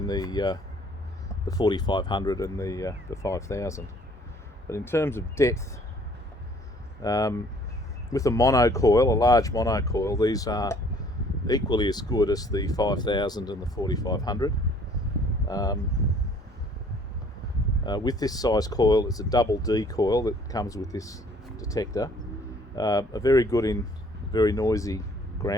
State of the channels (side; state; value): both; normal; correlation 0.57